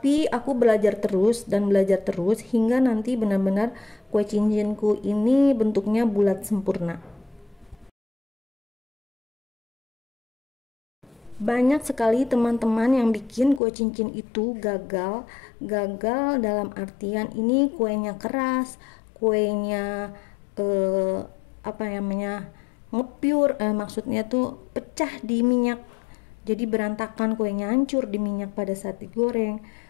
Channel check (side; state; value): right; drops out; at 13.6 s